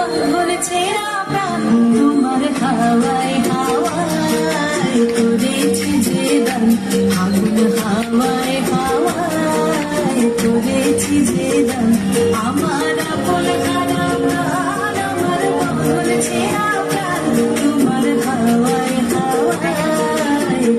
ছেঁড়া প্রাণ। তোমার হাওয়ায় হাওয়ায় করেছি যে গান, আগুন হাওয়ায় হাওয়ায় করেছি যে গান, আমার আপন হারা প্রাণ, আমার বন্ধুর ছেঁড়া প্রাণ। তোমার হাওয়ায় হাওয়ায়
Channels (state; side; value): identical; both; correlation 1.00